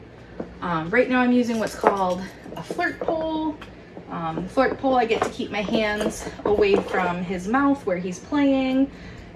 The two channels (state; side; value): identical; both; correlation 1.00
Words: Right now I'm using what's called a flirt pole. The flirt pole, I get to keep my hands away from his mouth where he's playing,